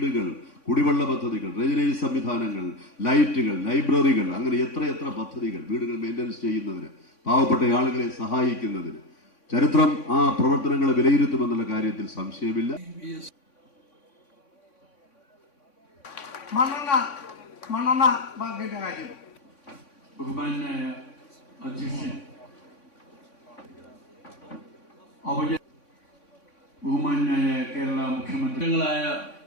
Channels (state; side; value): late; right; 3.5 ms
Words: കുടിവെള്ള പദ്ധതികൾ, ഡ്രെയിനേജ് സംവിധാനങ്ങൾ, ലൈറ്റുകൾ, ലൈബ്രറികൾ, അങ്ങനെ എത്ര പദ്ധതികൾ വീടുകൾ മെയിൻ്റനൻസ് ചെയ്യുന്നതിന്, പാവപ്പെട്ട ആളുകളെ സഹായിക്കുന്നതിന്. ചരിത്രം ആ പ്രവർത്തനങ്ങളെ വിലയിരുത്തുമെന്നുള്ള കാര്യത്തിൽ സംശയമില്ല. മണ്ണെണ്ണ ബാങ്കിന്റെ കാര്യം ബഹുമാനായ അധ്യക്ഷൻ, ബഹുമാനായ കേരള മുഖ്യമന്ത്രികളായ